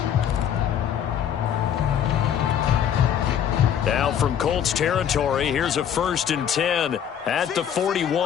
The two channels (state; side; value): quieter; right; 9.2 dB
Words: Now from Colts territory, here's a 1st and 10 at the